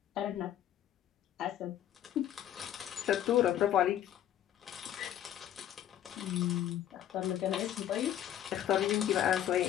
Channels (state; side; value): quieter; right; 11.2 dB